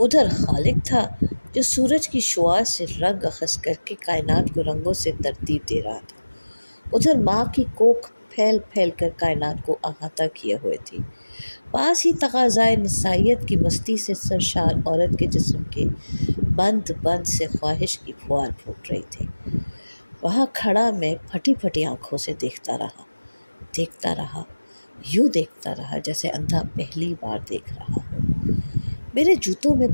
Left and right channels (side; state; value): both; inverted; correlation -1.00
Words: उधर खालिक था جو سورج کی شعاع سے رنگ اخذ کر کے کائنات کو رنگوں سے ترتیب دے رہا تھا۔ ادھر ماں کی کوکھ پھیل پھیل کر کائنات کو احاطہ کیے ہوئے تھی۔ پاس ہی تقاضائے نسائیت کی مستی سے سرشار عورت کے جسم کے بند بند سے خواہش کی پھوار پھوٹ رہی تھی۔ وہاں کھڑا میں پھٹی پھٹی آنکھوں سے دیکھتا رہا، یوں دیکھتا رہا جیسے اندھا پہلی بار دیکھ رہا ہو۔ میرے جوتوں میں